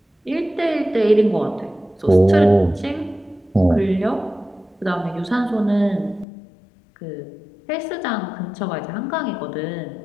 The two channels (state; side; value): drops out; right; at 6.2 s